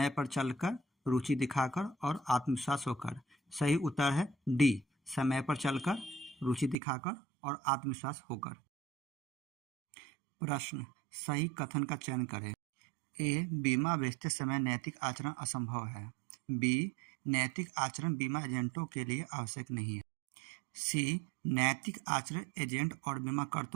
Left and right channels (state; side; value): drops out; left; at 6.8 s